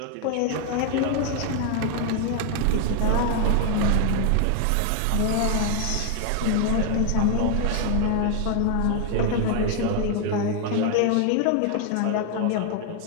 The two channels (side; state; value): both; different; correlation 0.00